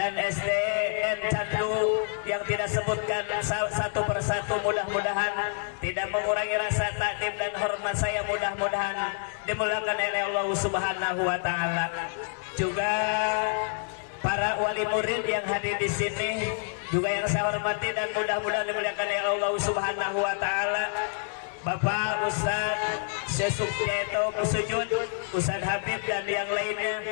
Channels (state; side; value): silent; right; digital silence